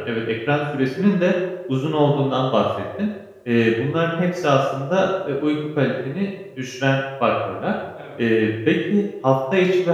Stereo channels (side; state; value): both; identical; correlation 1.00